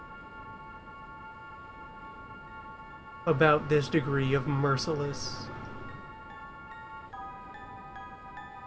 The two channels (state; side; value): identical; both; correlation 1.00